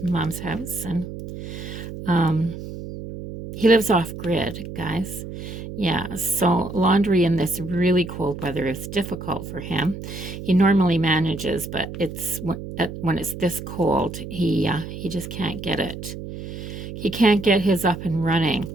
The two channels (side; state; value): right; noise; hum, 9 dB below the sound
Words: Mom's house. And he lives off grid, guys. Yeah, so laundry in this really cold weather is difficult for him. He normally manages, but it's when it's this cold, he just can't get it. He can't get his up and running